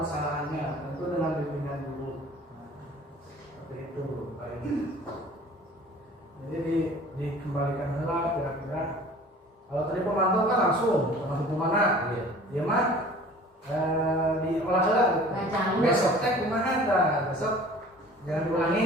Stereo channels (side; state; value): both; normal; correlation 0.46